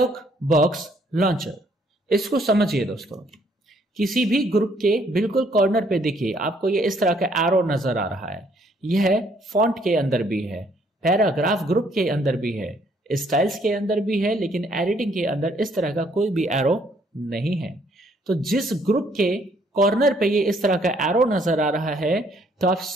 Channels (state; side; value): normal; both; correlation 0.66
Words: बॉक्स लॉन्चर, इसको समझिए दोस्तों। किसी भी ग्रुप के बिल्कुल कॉर्नर पे देखिए आपको ये इस तरह का एरो नजर आ रहा है। यह फॉन्ट के अंदर भी है, पैराग्राफ ग्रुप के अंदर भी है, स्टाइल्स के अंदर भी है, लेकिन एडिटिंग के अंदर इस तरह का कोई भी एरो नहीं है। तो जिस ग्रुप के कॉर्नर पे ये इस तरह का एरो नजर आ रहा है तो आप